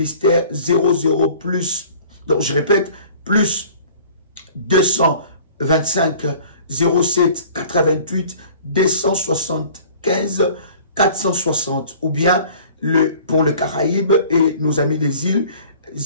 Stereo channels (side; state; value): both; inverted; correlation -0.49